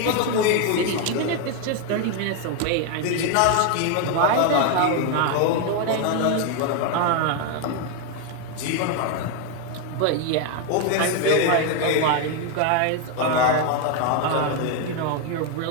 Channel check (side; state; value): both; different; correlation 0.01